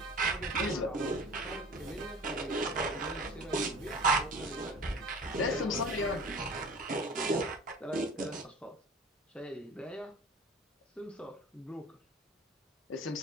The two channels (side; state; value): both; normal; correlation 0.41